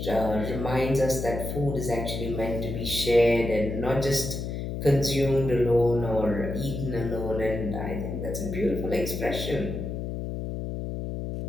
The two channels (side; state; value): left; noise; hum, 4 dB below the sound